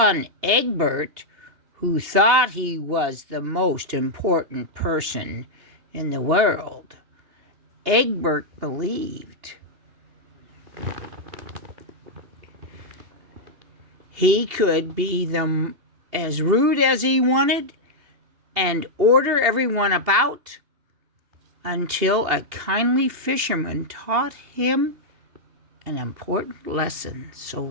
Egbert, who thought he was the most important person in the world. Elbert believed he could be as rude as he wanted and order everyone about until a kindly fisherman taught him an important lesson. So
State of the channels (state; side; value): late; left; 2.8 ms